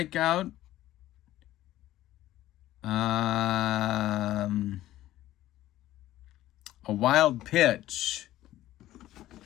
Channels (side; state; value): right; quieter; 14.5 dB